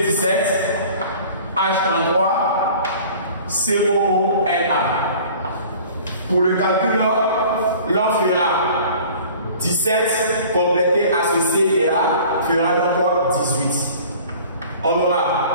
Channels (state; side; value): inverted; both; correlation -0.46